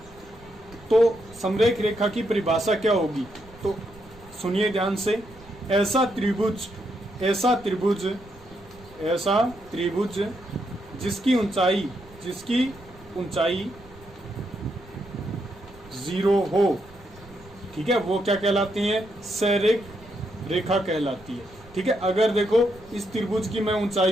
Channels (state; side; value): noise; right; rumble, 23 dB below the sound